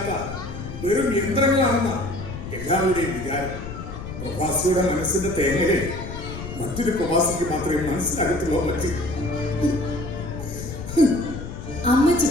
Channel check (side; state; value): left; noise; rumble, 9 dB below the sound